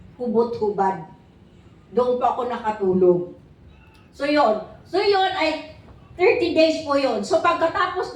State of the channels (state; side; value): identical; both; correlation 1.00